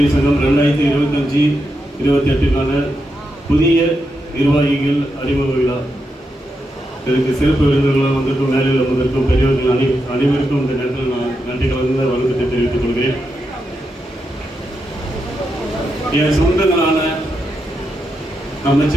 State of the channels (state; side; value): normal; both; correlation 0.85